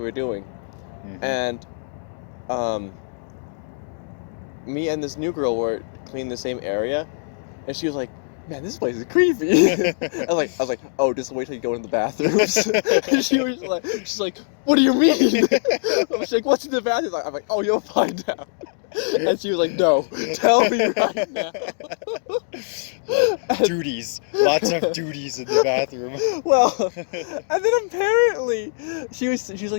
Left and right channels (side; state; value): right; silent; digital silence